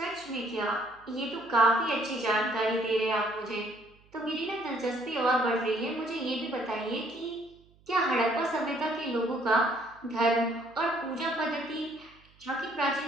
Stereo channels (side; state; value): right; noise; hum, 29 dB below the sound